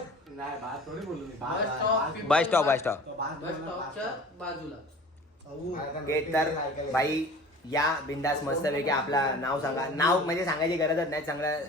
बस स्टॉप स्टॉपच्या बाजूला गेट. तर बाई या बिंदास मस्तपैकी आपला नाव सांगा. नाव म्हणजे सांगायची गरजच नाही. चांगलं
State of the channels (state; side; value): normal; both; correlation 0.42